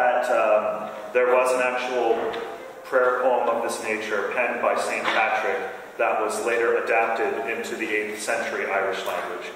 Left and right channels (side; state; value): both; identical; correlation 1.00